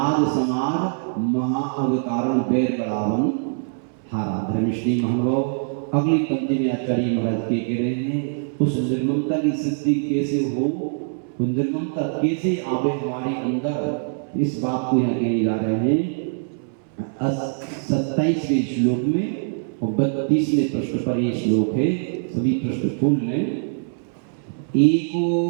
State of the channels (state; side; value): silent; left; 63 dB below the other